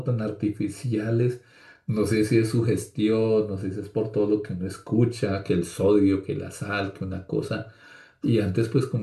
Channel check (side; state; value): both; identical; correlation 1.00